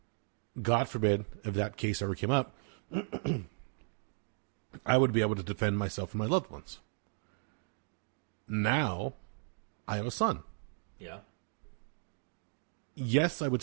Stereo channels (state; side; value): silent; left; 54 dB below the other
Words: God forbid, if that case ever came up, I would be able to defend myself and my loved ones. Now, I have a son. Yeah. Yes, I